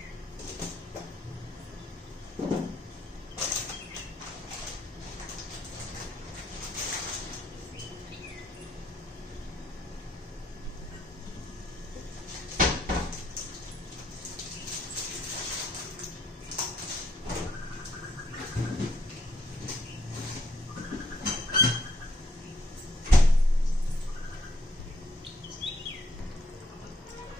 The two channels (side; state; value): both; normal; correlation 0.70